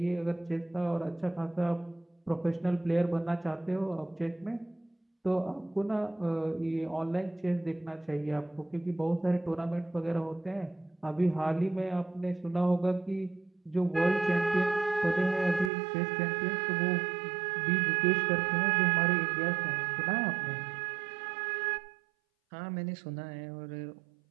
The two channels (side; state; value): left; drops out; at 15.7 s